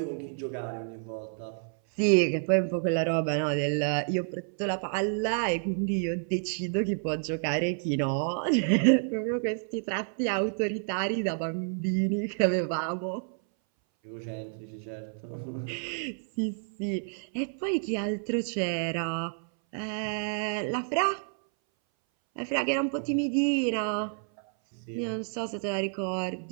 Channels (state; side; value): silent; left; 58 dB below the other